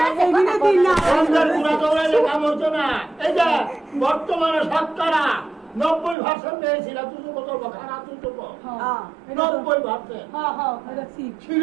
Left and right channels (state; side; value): drops out; left; at 6.2 s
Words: বর্তমানে শতকরা 90% পেয়েছিল তুই কত খারাপ তুই তো 90%